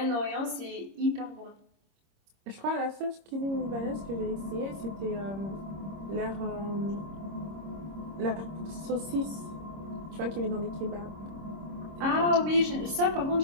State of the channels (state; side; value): late; left; 26 ms